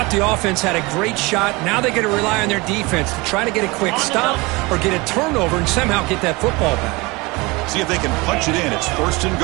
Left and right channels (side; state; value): left; quieter; 24.4 dB